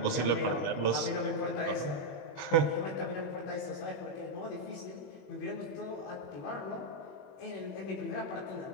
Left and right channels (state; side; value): late; right; 21 ms